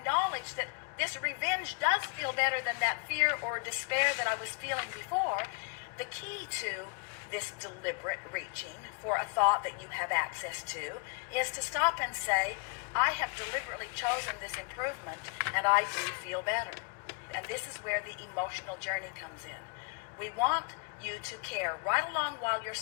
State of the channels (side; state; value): right; quieter; 34.3 dB